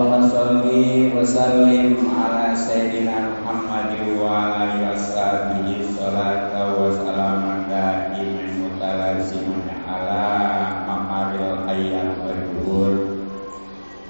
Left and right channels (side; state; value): both; inverted; correlation -1.00